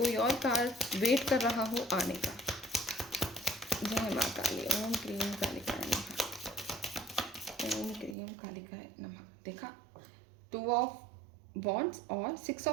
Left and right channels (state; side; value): drops out; left; at 8.2 s